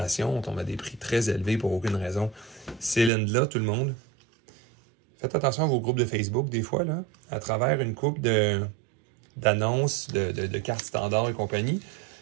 on tombe à des prix très élevés pour aucune raison. Ces LEN-là, tout le monde, faites attention à vos groupes de Facebook, des fois, là, à travers une coupe d'annonces, de cartes standards et compagnie.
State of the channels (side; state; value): left; drops out; at 3.1 s